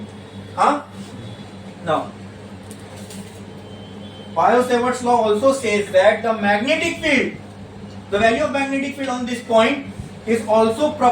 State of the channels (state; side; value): identical; both; correlation 1.00